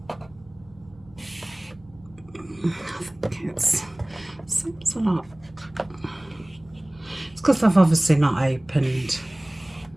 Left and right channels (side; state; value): right; noise; hum, 25 dB below the sound